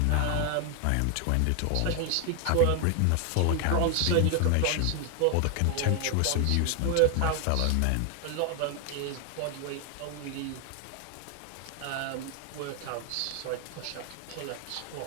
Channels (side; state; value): both; different; correlation 0.01